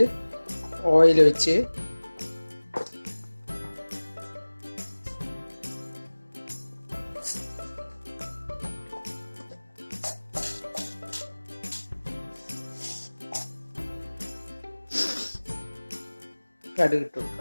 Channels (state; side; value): inverted; both; correlation -1.00